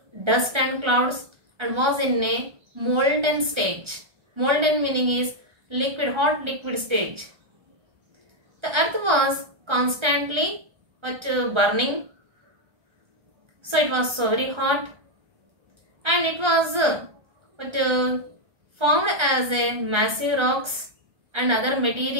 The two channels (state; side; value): late; left; 1.3 ms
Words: dust and clouds and was in a molten stage. Molten meaning is liquid, hot liquid stage. The earth was constantly burning. So it was so very hot, and it was formed as a massive rocks and other